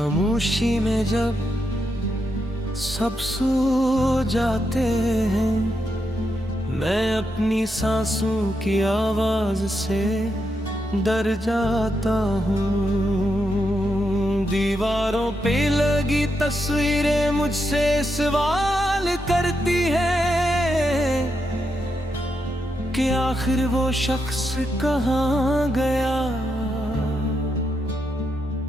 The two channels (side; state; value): both; normal; correlation 0.83